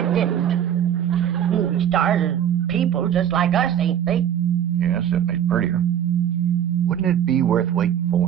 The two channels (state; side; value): quieter; left; 9.8 dB